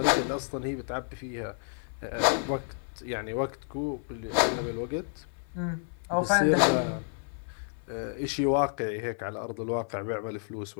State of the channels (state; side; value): silent; right; 58 dB below the other